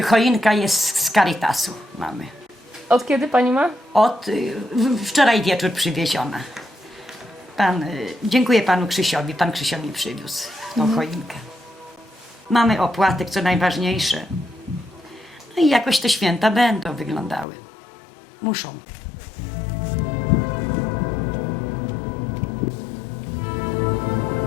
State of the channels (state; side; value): drops out; right; at 17.4 s